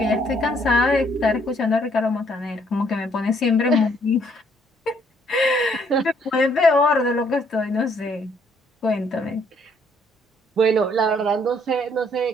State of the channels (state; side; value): normal; both; correlation 0.66